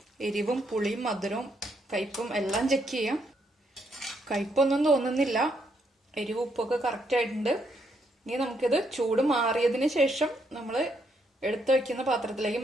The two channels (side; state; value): both; normal; correlation 0.75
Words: എരിവും പുളിയും മധുരവും കയ്പും എല്ലാം ചെക്ക് ചെയ്യാം. കയ്പൊന്നും തോന്നുന്നില്ല, എരിവും ഉപ്പൊക്കെ കറക്റ്റ് ആയിട്ടുണ്ട്. ഇനി നമുക്കിത് ചൂട് മാറിയതിന് ശേഷം നമ്മൾ എടുത്തു വയ്ക്കുന്ന പാത്രത്തിലേക്ക്